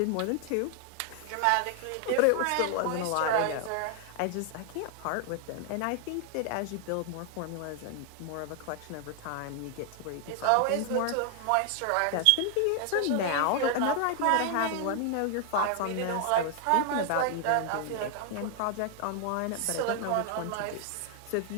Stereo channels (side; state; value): both; different; correlation 0.00